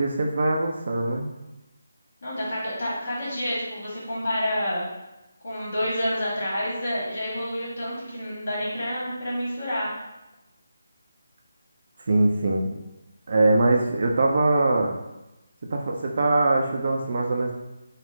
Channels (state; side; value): inverted; both; correlation -0.89